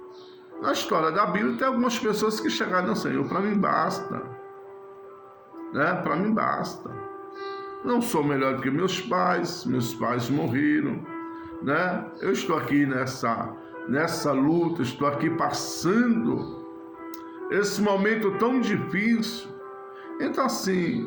Na história da Bíblia tem algumas pessoas que chegaram ao Senhor, para mim basta, né? Para mim basta. Não sou melhor do que meus pais morreram, né? Eu estou aqui nessa luta, estou aqui passando esse momento tão difícil. Então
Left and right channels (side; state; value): both; identical; correlation 1.00